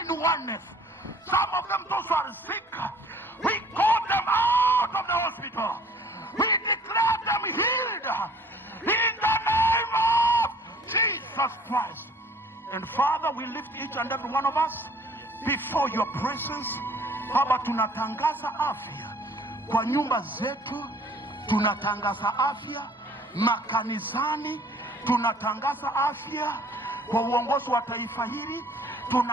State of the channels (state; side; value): normal; both; correlation 0.54